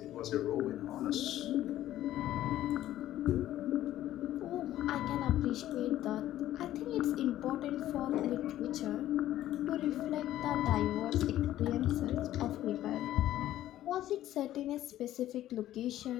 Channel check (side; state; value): right; quieter; 13.4 dB